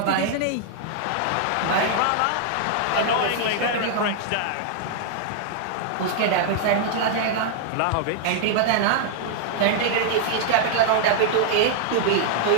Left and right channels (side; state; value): both; different; correlation -0.01